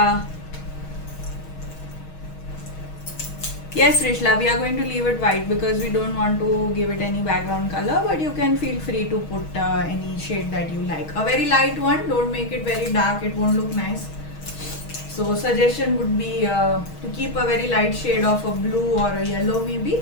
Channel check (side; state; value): right; late; 6.3 ms